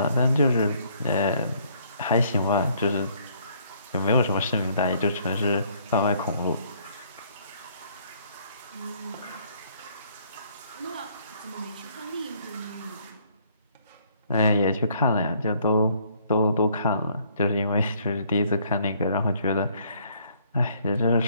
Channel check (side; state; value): both; inverted; correlation -0.64